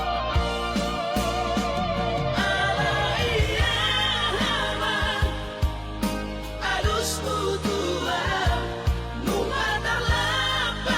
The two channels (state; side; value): identical; both; correlation 1.00